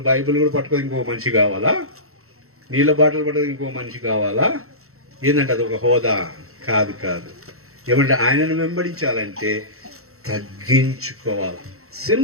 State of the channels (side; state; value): left; late; 0.63 ms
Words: బైబిల్ కూడా పట్టుకొని ఇంకో మనిషి కావాలా? నీళ్ళ బాటలు పట్టుకొని ఇంకో మనిషి కావాలా? ఏంటంటే అది ఒక హోదా కాదు. ఏమంటే ఆయనను వెంబడించాలంటే తగ్గించుకోవాలి.